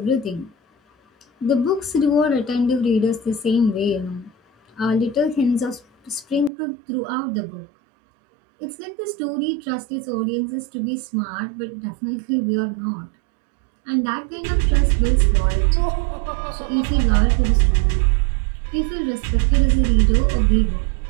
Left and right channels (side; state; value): left; drops out; at 6.5 s